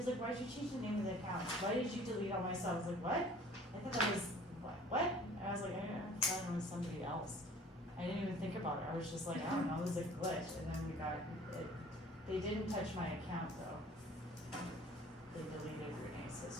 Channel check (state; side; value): normal; both; correlation 0.50